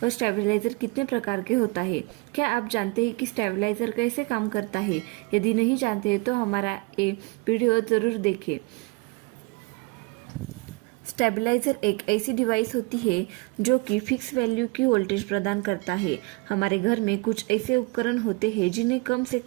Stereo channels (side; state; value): left; quieter; 27.4 dB